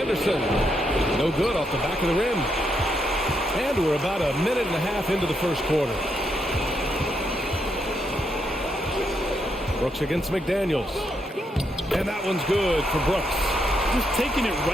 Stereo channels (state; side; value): normal; both; correlation 0.79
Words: No good off the back of the rim. And we're about a minute and a half into the first quarter. Brooks against McDaniels. And that one's good for Brooks. Just taking it